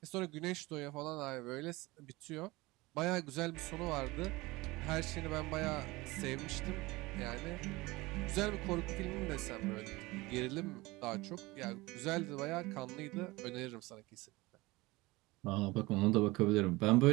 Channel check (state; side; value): quieter; left; 21.5 dB